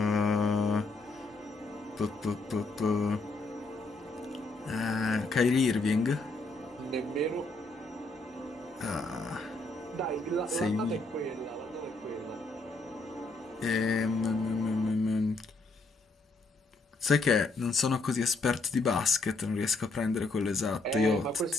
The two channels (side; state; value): right; quieter; 3.3 dB